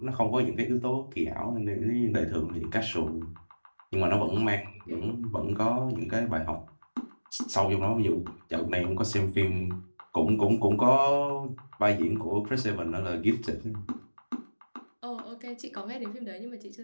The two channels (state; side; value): inverted; both; correlation -1.00